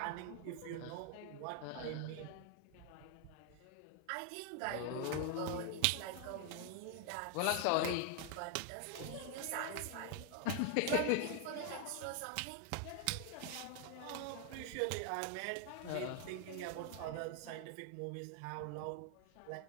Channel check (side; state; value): both; different; correlation 0.00